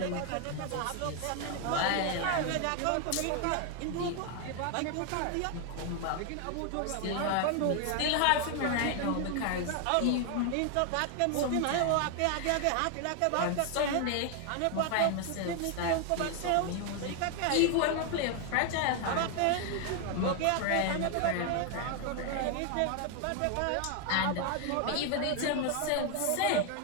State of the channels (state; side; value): different; both; correlation 0.00